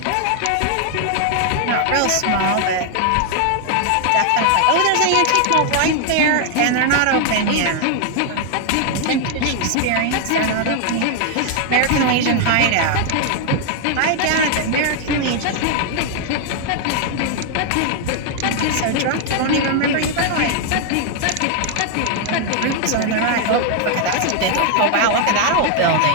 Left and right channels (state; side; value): different; both; correlation 0.00